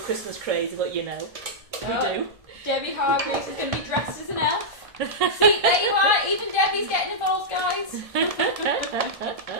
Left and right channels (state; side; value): late; left; 1.6 ms